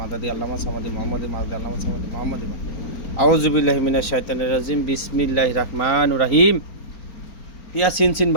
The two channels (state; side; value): late; right; 4.4 ms